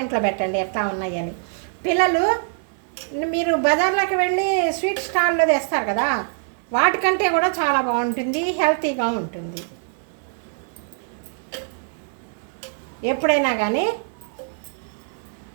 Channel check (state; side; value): silent; left; 57 dB below the other